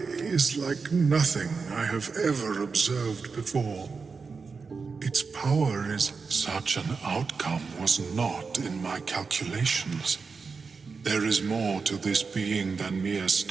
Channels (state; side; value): quieter; left; 4.9 dB